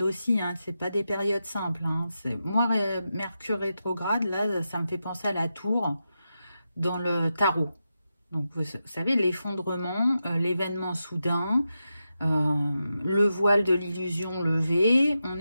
aussi, hein. C'est pas des périodes simples, hein. Moi, Mercure rétrograde, là, ça me fait penser à la tour dans le tarot. Donc, vous savez, l'effondrement, l'événement soudain, le voile de l'illusion levé, on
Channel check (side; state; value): both; inverted; correlation -0.89